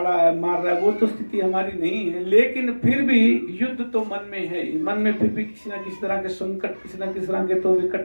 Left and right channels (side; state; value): both; inverted; correlation -1.00